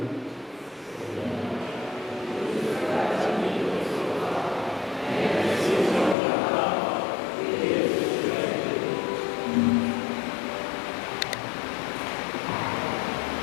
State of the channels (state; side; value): drops out; right; at 6.2 s